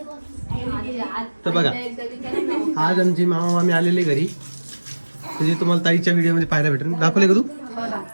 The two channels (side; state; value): both; inverted; correlation -1.00